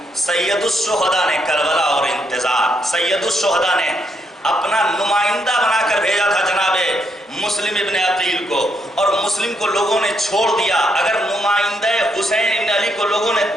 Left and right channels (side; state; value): both; normal; correlation 0.76